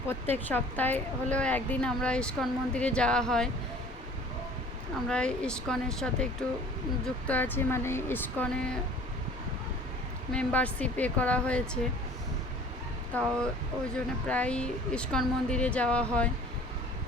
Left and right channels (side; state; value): both; normal; correlation 0.48